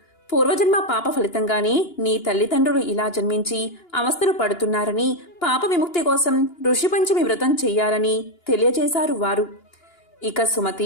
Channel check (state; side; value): late; right; 2.9 ms